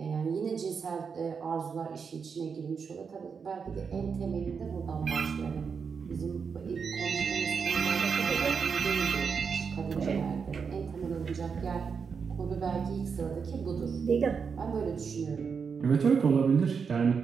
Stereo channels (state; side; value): quieter; left; 5.9 dB